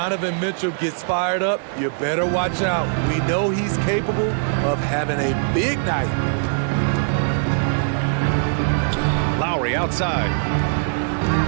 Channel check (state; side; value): silent; left; digital silence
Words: Mitchell gets fired up, you better watch out. We know he's capable of having a big night. Lowry outside.